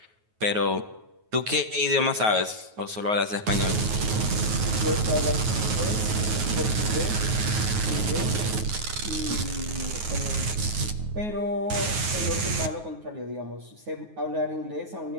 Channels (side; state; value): left; late; 9.4 ms